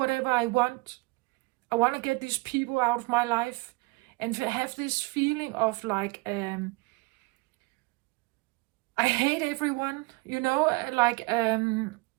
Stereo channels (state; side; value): quieter; left; 26.3 dB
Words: I want. I want to get these people out of my life. And to have this feeling of like, I hate everyone, you know, like, and